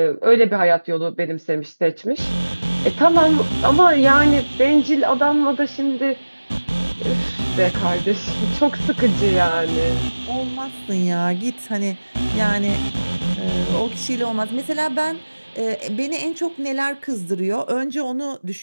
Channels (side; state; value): both; inverted; correlation -1.00